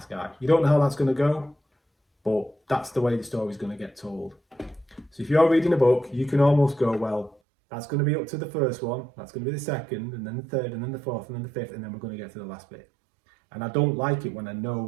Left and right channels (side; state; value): left; drops out; at 7.4 s